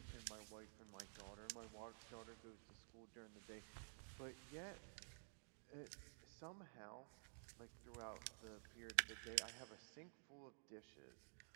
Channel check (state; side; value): silent; left; digital silence